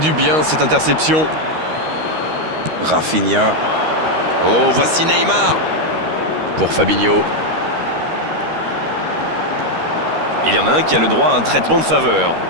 bien cette interception. Rafinha. Oh, voici Neymar. Pour Fabinho. Il y en a un qui a le droit à un traitement de faveur.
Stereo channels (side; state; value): left; late; 13 ms